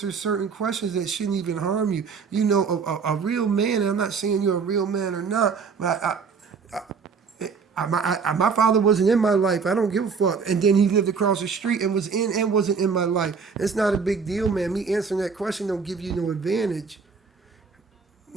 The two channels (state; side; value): quieter; left; 5.6 dB